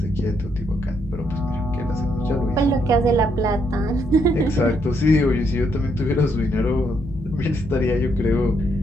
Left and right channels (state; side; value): normal; both; correlation 0.75